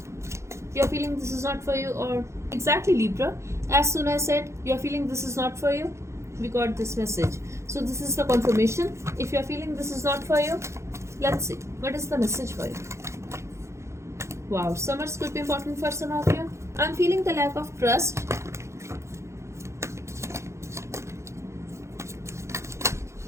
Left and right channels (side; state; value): left; late; 0.14 ms